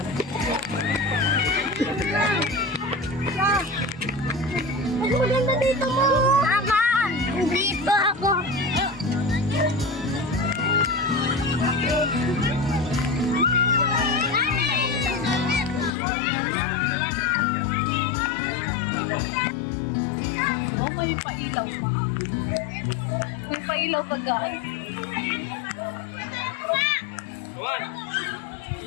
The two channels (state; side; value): drops out; right; at 16.0 s